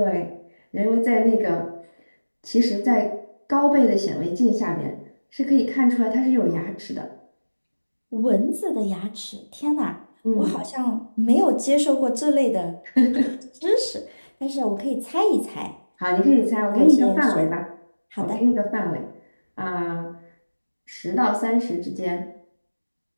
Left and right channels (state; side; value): inverted; both; correlation -1.00